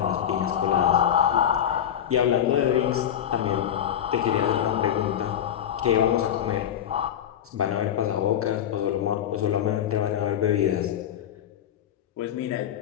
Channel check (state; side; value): quieter; right; 9.9 dB